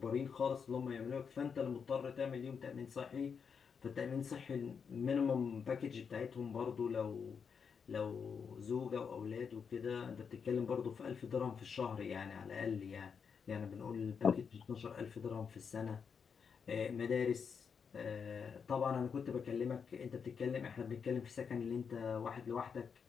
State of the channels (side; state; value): right; quieter; 6.3 dB